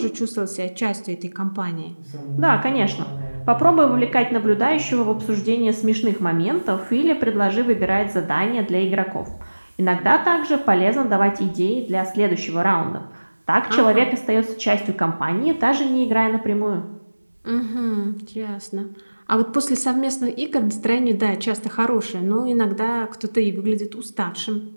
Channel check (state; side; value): inverted; both; correlation -1.00